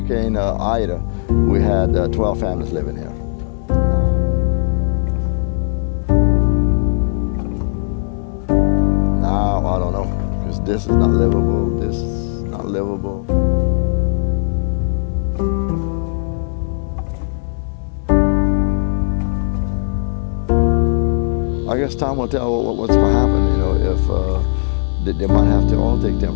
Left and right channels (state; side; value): silent; right; digital silence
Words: Ida, we had 12 families living here. Now, I don't know, because this is not livable, this is not livable. I guess time will tell what's going to happen, you know, if they might have to all take